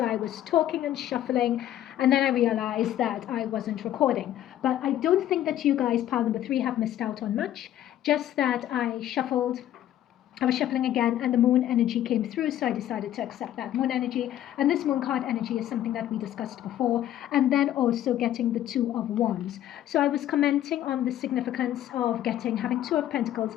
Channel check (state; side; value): quieter; right; 12.2 dB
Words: I was talking and shuffling, and then I realized that I wasn't recording. But I don't think that you guys, pile number 3, have missed out on much, just that I was shuffling again, and the moon energy came through, so I decided to accept that moon energy. And this moon card energy is something that we discussed before, and then also getting the 2 of Wands. So I was commenting on the significance of having 2 of Pentacles,